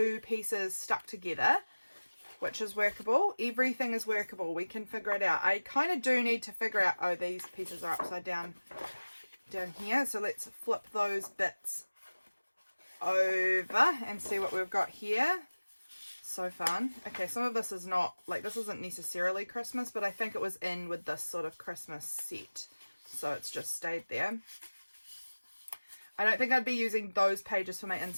pieces stuck together, which is workable. Everything is workable. We can figure it out. I kind of do need to figure out, oh, these pieces are upside down here. So let's flip those bits over and see what we've got here. So fun. Okay, some of this is not, like, this isn't necessarily Christmas, but I think it was in with this sort of Christmas set. So it's just stayed there. I don't think I'd be using those pages for my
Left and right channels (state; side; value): inverted; both; correlation -1.00